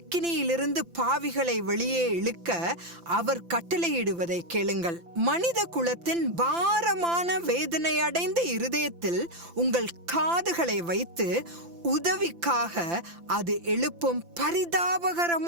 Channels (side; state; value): left; late; 5.9 ms